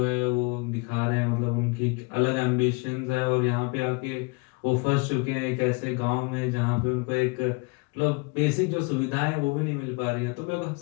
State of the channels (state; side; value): quieter; right; 29.6 dB